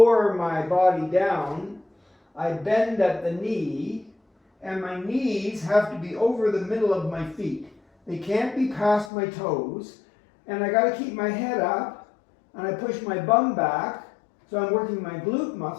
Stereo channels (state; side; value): drops out; right; at 9.1 s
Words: my body down, I bend at the knee, and my knees have to be over the middle of my feet. They can't be past my toes, and I got to keep my head up, and I push my bum back, so I'm working my glute